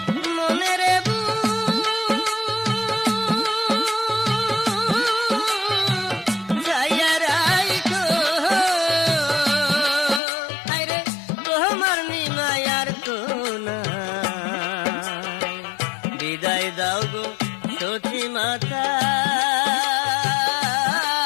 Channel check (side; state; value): right; drops out; at 10.2 s